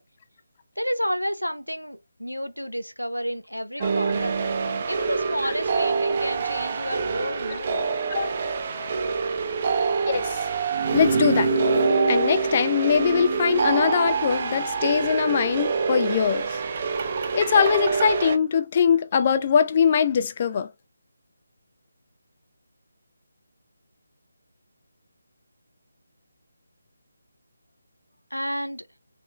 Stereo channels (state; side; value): inverted; both; correlation -0.74